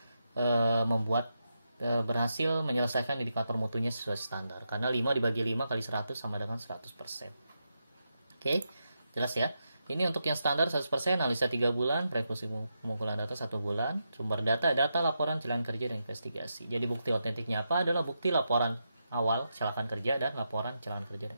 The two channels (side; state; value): both; inverted; correlation -0.85